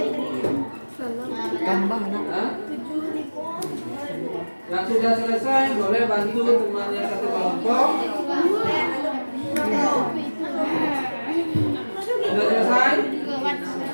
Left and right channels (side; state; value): both; inverted; correlation -1.00